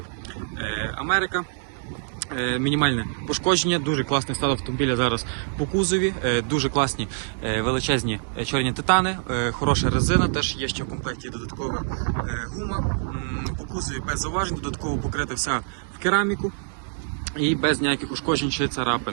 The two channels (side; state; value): left; silent; 62 dB below the other